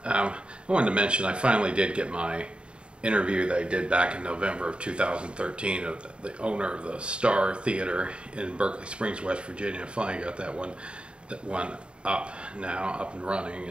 I wanted to mention I finally did get my interview that I did back in November of 2013 of the owner of the Star Theater in Berkeley Springs, West Virginia. I finally got that one up now, up and running,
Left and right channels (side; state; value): left; late; 0.054 ms